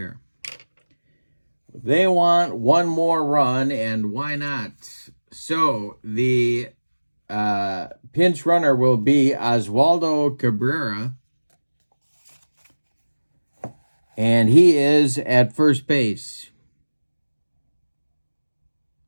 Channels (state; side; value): inverted; both; correlation -1.00